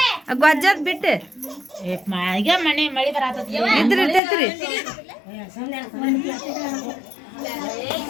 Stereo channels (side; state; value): right; drops out; at 4.2 s